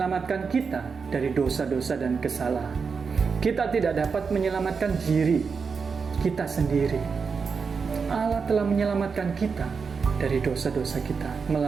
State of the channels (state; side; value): quieter; left; 5.4 dB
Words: kita dari dosa-dosa dan kesalahan. Kita tidak dapat menyelamatkan diri kita sendiri. Allah telah menyelamatkan kita dari dosa-dosa kita